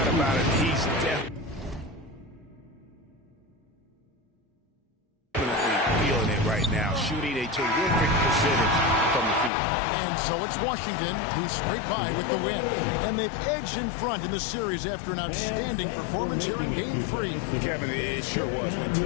about it. He's definitely feeling it right now. Shooting a terrific percentage from the field. And so it's Washington who scraped by with the win. And they've edged in front in the series after an outstanding performance here in Game 3. Kevin, it sure was. When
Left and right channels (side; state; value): right; drops out; at 9.5 s